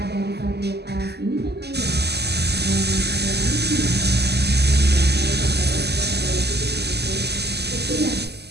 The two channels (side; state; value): left; late; 0.48 ms